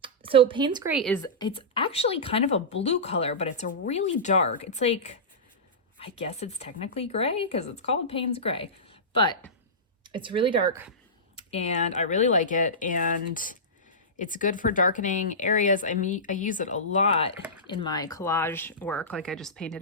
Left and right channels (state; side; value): normal; both; correlation -0.18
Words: Payne's Gray it's actually kind of a blue color, but it's a really dark. It's like, I guess it's technically gray because it's called Payne's Gray. But it's really dark and I really like it, and it's good for darkening areas. I use it a lot in my collage work. Like I just